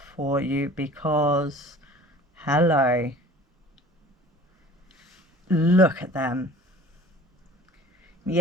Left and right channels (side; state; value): both; normal; correlation 0.45